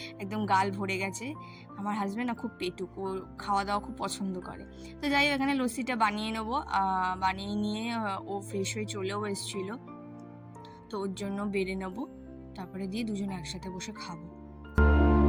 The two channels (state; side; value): identical; both; correlation 1.00